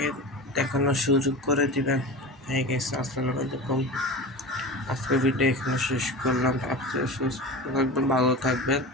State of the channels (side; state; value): both; normal; correlation 0.30